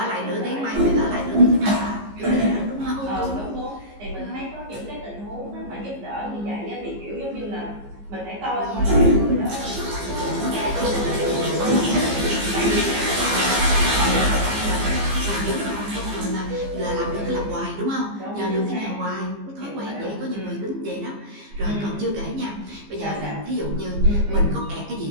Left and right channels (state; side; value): late; left; 15 ms